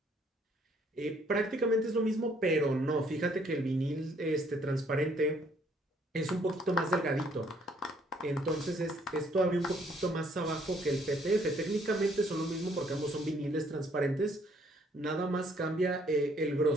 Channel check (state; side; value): normal; both; correlation 0.64